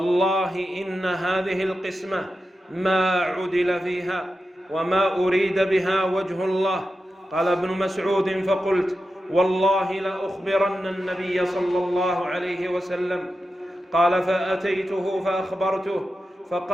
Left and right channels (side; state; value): both; normal; correlation 0.91